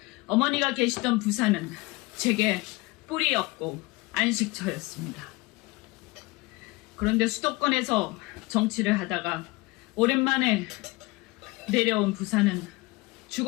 어머니가 계시던 부산은 제게 뿌리였고 안식처였습니다. 그런데 수도권에서 정치를 하다가 오랜만에 내려온 부산은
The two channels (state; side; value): quieter; right; 22.8 dB